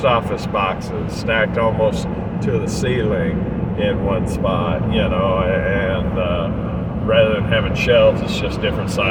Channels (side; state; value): both; identical; correlation 1.00